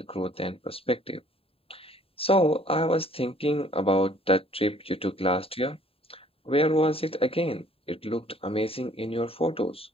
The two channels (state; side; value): late; right; 0.27 ms